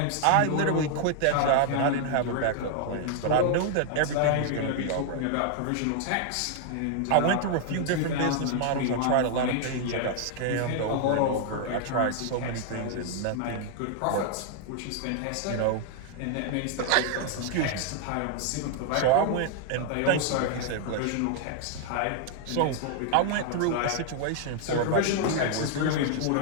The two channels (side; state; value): both; different; correlation 0.00